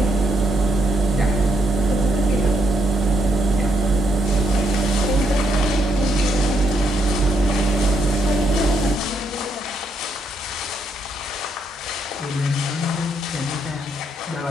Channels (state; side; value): normal; both; correlation 0.77